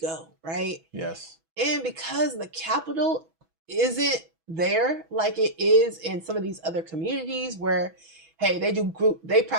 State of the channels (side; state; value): left; late; 6.1 ms